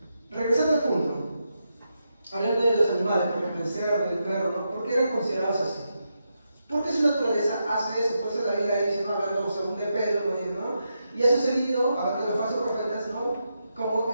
regresando al punto, hablando de los animales, por ejemplo, el cerdo, el perro, ¿no? ¿Por qué eran considerados así? Porque su naturaleza hace eso, por eso la Biblia dice, ¿no? Hablando según de Pedro, ¿no? Y ha sucedido, hablando de los falsos profetas, ¿no? Como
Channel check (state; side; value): inverted; both; correlation -0.85